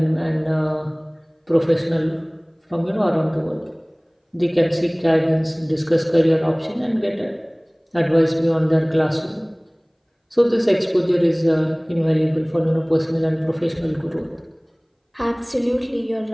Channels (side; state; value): both; identical; correlation 1.00